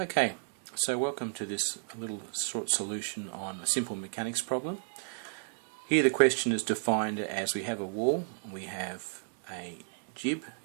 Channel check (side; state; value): left; silent; 56 dB below the other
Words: so welcome to this little short solution on a simple mechanics problem. Here the question is defined as we have a wall, we have a jib